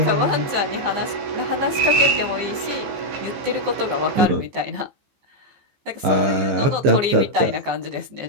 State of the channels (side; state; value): left; late; 15 ms